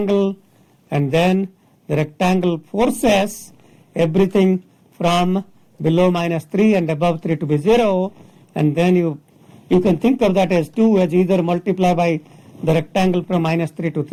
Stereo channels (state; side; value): identical; both; correlation 1.00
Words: and then the rectangle forces everything from below minus 3 and above 3 to be 0, and then you can think of that as 2, as either multiply by the rectangle from minus 3 to